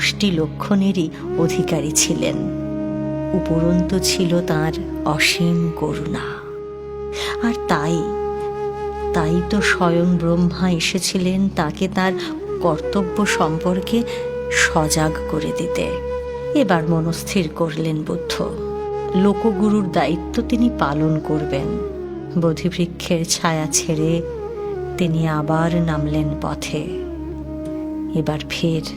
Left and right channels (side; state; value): both; identical; correlation 1.00